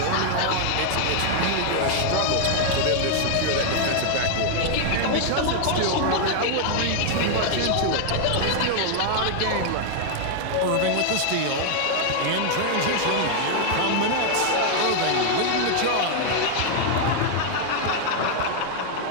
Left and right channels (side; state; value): both; different; correlation 0.00